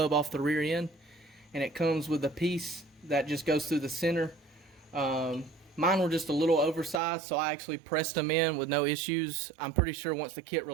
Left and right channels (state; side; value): drops out; left; at 7.0 s